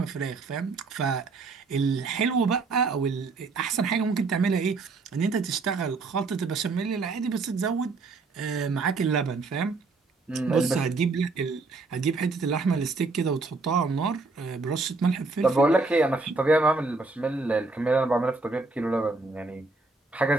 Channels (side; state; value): left; quieter; 3.8 dB